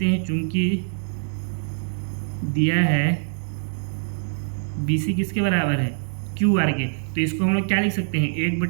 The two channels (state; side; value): silent; left; digital silence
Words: हैं चूंकि दिया है बी सी किसके बराबर है, क्यू आर के, तो इसको हम लोग क्या लिख सकते हैं,